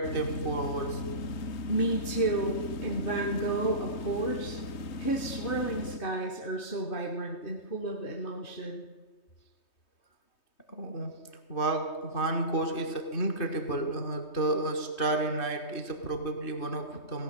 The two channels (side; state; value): right; late; 3.2 ms